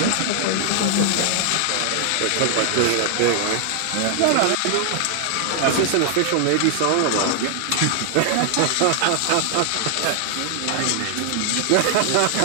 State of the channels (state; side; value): different; both; correlation 0.00